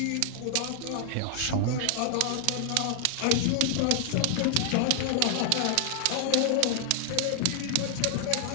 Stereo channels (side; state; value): both; different; correlation 0.00